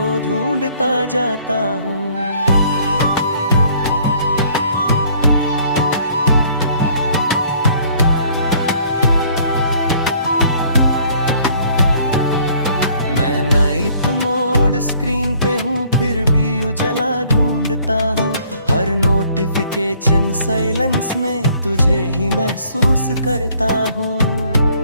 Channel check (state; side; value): inverted; both; correlation -0.59